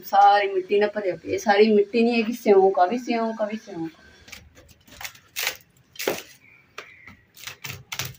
मिट्टी ना भरिया पई। सारी मिट्टी नहीं है कि सिਉਂक आ भी सिਉਂक आ भी सिਉਂक।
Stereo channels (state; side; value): identical; both; correlation 1.00